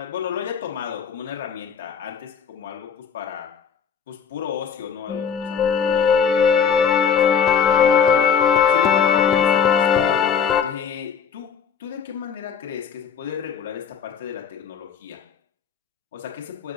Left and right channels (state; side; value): quieter; right; 7.0 dB